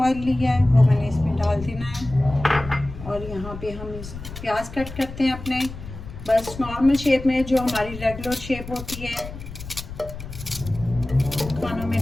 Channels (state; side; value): noise; left; rumble, 12 dB below the sound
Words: लिया है, वो मैंने इसमें डाल देना है। और यहाँ पे हम इस प्याज कट करते हैं अपने बस नॉर्मल शेप में, जो हमारी रेगुलर शेप होती है खानों में